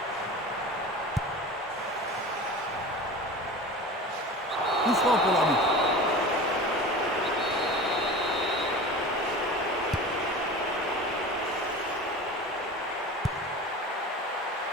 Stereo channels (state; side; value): normal; both; correlation 0.34